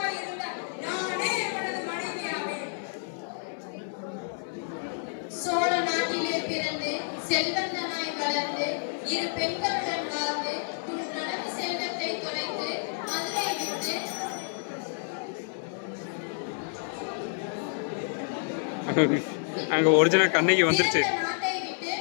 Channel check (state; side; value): silent; right; 58 dB below the other